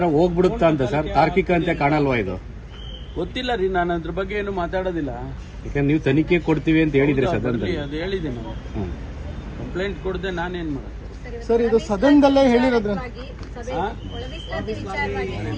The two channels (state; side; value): identical; both; correlation 1.00